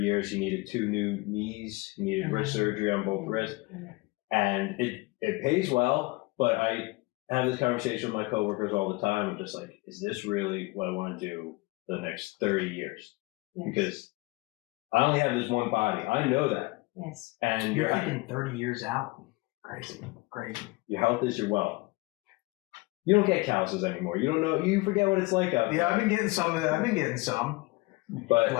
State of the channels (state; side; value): quieter; right; 23.9 dB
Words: He needed 2 new knees. He needed wrist surgery on both wrists. And it pays well, but I have this conversation with my coworkers all the time. I'm just like, is this really what I want to do the next 30 years? Yes. Because I only have this one body. I know that. Yes. And You're thinking 30 years out. Crazy. Your health is your wealth. You don't get calluses anymore. You don't know. You forget what it's like out there. Yeah, I've been getting some of that. I've been getting some. But